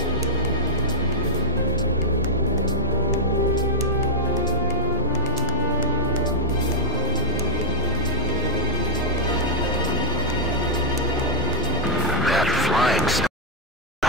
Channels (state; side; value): normal; both; correlation -0.09